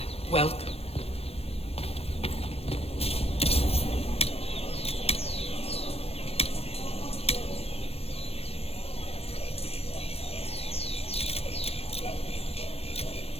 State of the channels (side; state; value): right; late; 0.29 ms